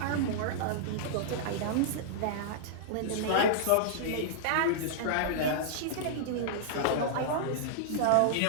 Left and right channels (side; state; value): both; different; correlation -0.02